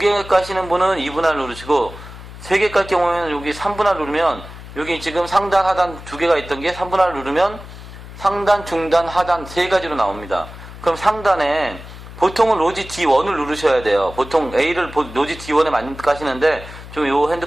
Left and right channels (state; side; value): noise; left; hum, 15 dB below the sound